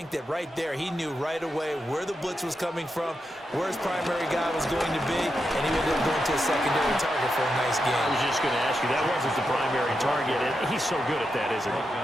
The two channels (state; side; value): normal; both; correlation 0.86